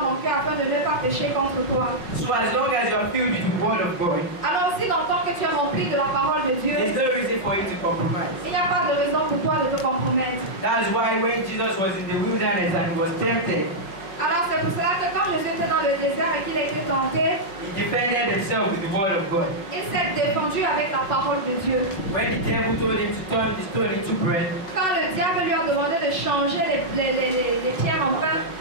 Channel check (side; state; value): right; late; 5.4 ms